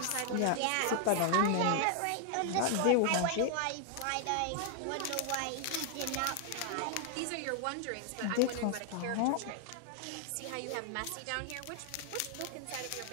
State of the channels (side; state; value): both; different; correlation 0.00